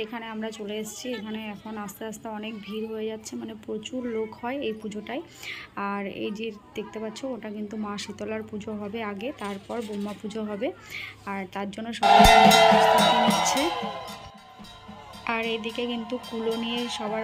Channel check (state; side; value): identical; both; correlation 1.00